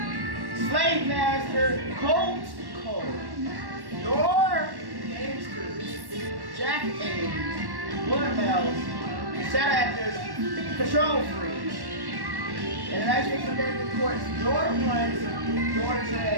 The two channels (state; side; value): late; left; 1.1 ms